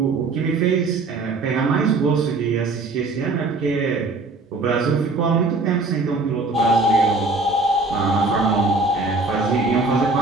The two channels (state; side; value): quieter; left; 3.4 dB